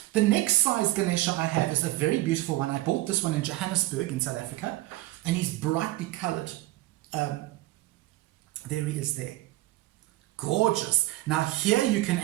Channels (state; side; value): quieter; left; 18.0 dB